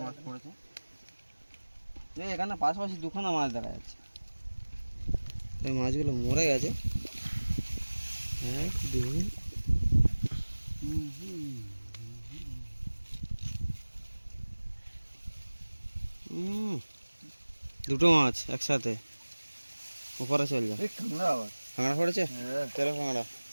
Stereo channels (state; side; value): inverted; both; correlation -1.00